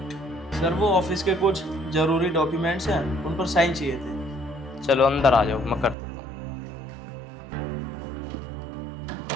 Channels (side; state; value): left; drops out; at 6.0 s